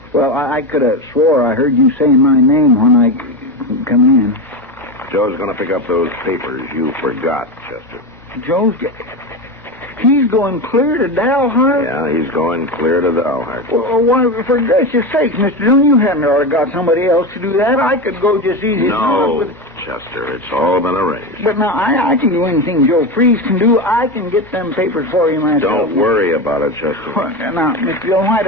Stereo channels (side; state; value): both; normal; correlation 0.18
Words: Well, I could have swore I heard you saying my name when I come in. Joe's going to pick up those papers you forgot, Chester. Joe's... He's going clear to Dalhart? Yeah, he's going clear to Dalhart. Well, why, for gracious sakes, Mr. Dillon, you hadn't already got somebody else to do that. I could go just easy as No, not with... Chester, it's all been arranged. But now, I can do anything Joe Freeze can do. I can get them papers for you myself. Don't worry about it, Chester. Well, now, Mr. Dillon, why